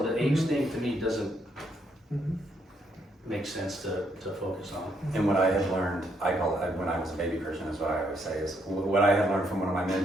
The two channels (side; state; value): both; normal; correlation 0.74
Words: the age thing to me doesn't make sense to focus on. And what I have learned, I call it, when I was a baby Christian, is what I always say, is what I had learned from one of my